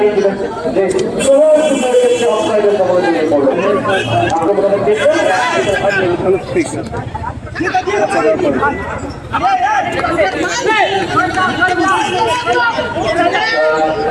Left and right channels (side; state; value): both; identical; correlation 1.00